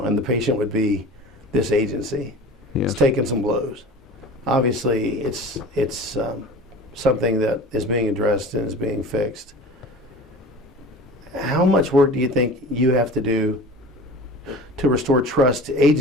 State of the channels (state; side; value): normal; both; correlation 0.38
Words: and the patient would be this agency. Yes. It's taking some blows. obviously it's something that is being addressed and is being fixed. How much work do you think you have to do to restore trust